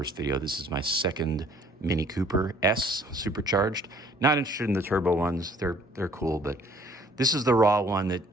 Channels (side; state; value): both; normal; correlation 0.58